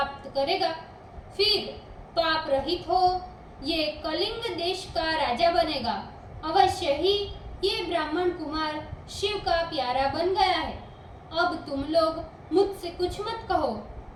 करेगा। फिर पाप रहित हो ये कलिंग देश का राजा बनेगा। अवश्य ही ये ब्राह्मण कुमार शिव का प्यारा बन गया है। अब तुम लोग मुझसे कुछ मत कहो,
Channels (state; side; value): identical; both; correlation 1.00